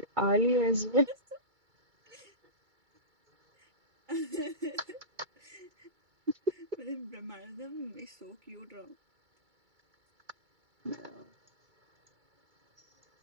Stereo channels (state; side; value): late; left; 2.3 ms